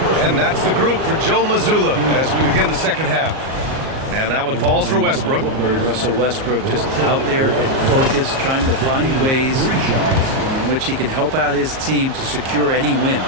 And that's the group for Joe Mazzulla as we begin the second half. And that one falls for Westbrook. Russell Westbrook just out there and focused, trying to find ways in which he can help out his team to secure any win.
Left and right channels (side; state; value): left; late; 38 ms